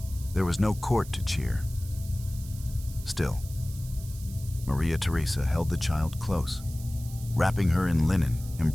There was no court to cheer. Still, Maria Theresa held the child close, wrapping her in linen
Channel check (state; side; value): noise; right; hiss, 17 dB below the sound